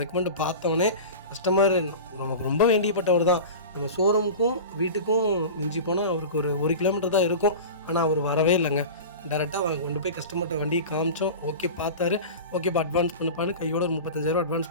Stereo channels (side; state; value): both; inverted; correlation -0.31